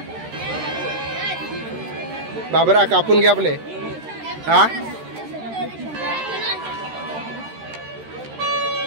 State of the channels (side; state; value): left; late; 13 ms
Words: बाबरा कापून घे आपले. हा